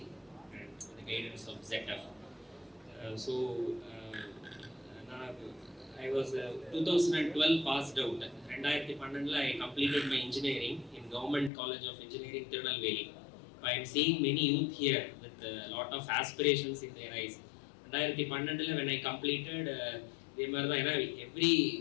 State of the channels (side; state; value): right; drops out; at 11.5 s